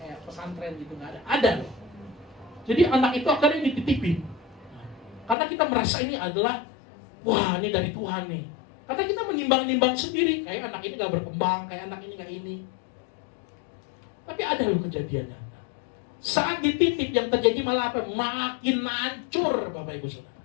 pesantren gitu, gak ada. Ada loh. Jadi anak itu akhirnya dititipin. Karena kita merasa ini adalah, wah ini dari Tuhan nih. Karena kita menimbang-nimbang sendiri, kayak anak ini gak berkembang, kayak anak ini gak ini. Tapi ada loh kejadiannya. Saat dititip yang terjadi malah apa? Makin hancur Bapak Ibu Saudara.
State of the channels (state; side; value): drops out; right; at 5.4 s